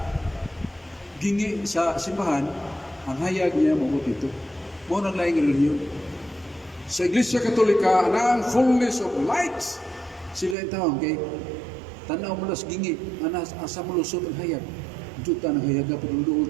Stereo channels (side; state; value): left; drops out; at 10.6 s